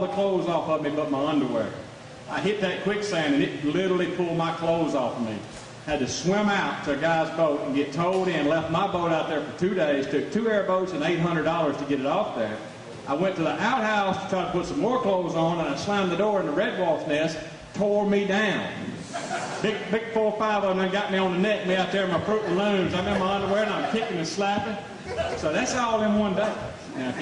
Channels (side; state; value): both; identical; correlation 1.00